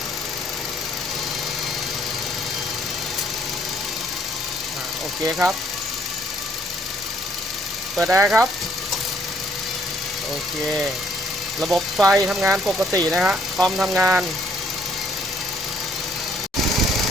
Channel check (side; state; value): both; normal; correlation 0.65